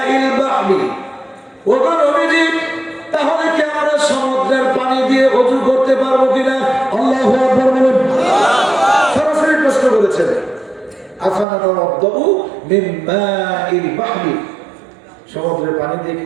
বাহরি। ওগো নবীজি, তাহলে কি আমরা সমুদ্রের পানি দিয়ে ওযু করতে পারবো কিনা? আল্লাহু আকবার বলেন। সরাসরি প্রশ্ন করেছেন, আফানা তাওয়াদ্দু মিন মাইল বাহরি, সমুদ্রের পানি দিয়ে কি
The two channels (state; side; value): drops out; left; at 11.5 s